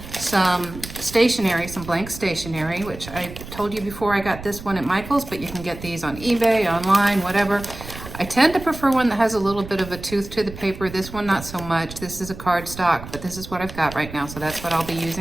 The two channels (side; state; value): right; noise; rumble, 13 dB below the sound